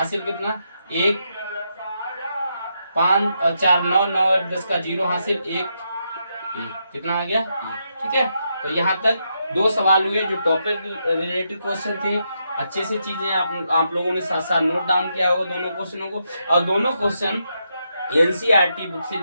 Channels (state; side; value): inverted; both; correlation -0.81